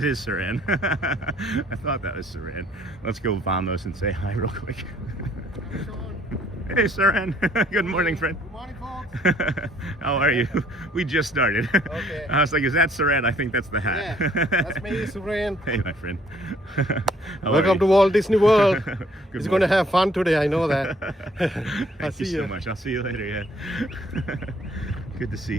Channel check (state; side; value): normal; both; correlation 0.62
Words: is Saran. I thought that was Saran. Let's go Vamos and say hi real quick. Hey, Saran. Good morning, friend. Good morning, folks. How are you? We just started. Okay. I was like, is that Saran? I think that's the hat. Yeah, that's me, Saran. Hey, my friend. Welcome to Walt Disney World. He's going to have fun today, I know that. Thank you so much. I'll see you later, yeah. Good to see